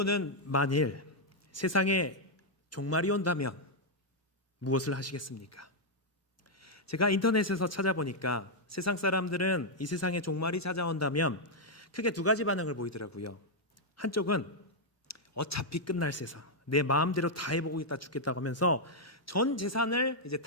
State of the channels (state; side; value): normal; both; correlation -0.03